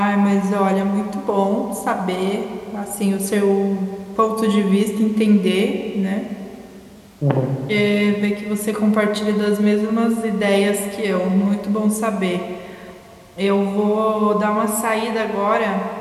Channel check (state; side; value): identical; both; correlation 1.00